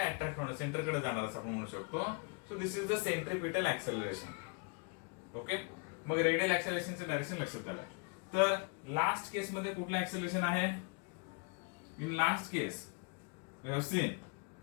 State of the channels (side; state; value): right; quieter; 32.3 dB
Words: होणं, सेंटर कडे जाणार असं आपण म्हणू शकतो. So this is the centripetal acceleration. Okay, मग रेडियल ऍक्सेलरेशनचं डायरेक्शन लक्षात आलं. तर लास्ट केस मध्ये कुठलं ऍक्सेलरेशन आहे? In last case we have seen